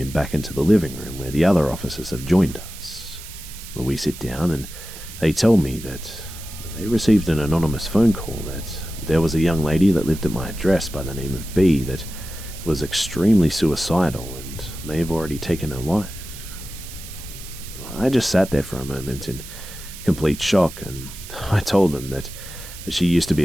back into the living room where the other officers have joined us. We sit down and they tell me that they received an anonymous phone call that there was a young lady that lived at my address by the name of B that was extremely suicidal and may have already taken her life. I just sat there for a moment in complete shock, and I told them that she used to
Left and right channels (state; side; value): noise; right; hiss, 14 dB below the sound